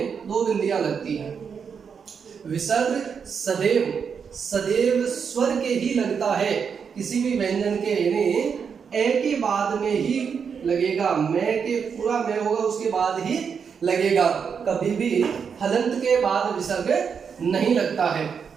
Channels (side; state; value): left; quieter; 6.5 dB